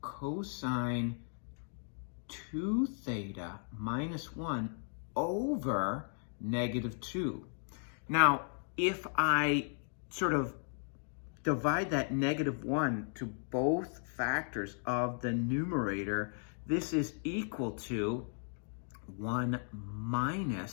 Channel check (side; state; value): right; silent; 54 dB below the other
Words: cosine 2 theta minus 1 over negative 2. Now, if I sort of divide that negative 1 to both factors of the numerator, this is equal to 1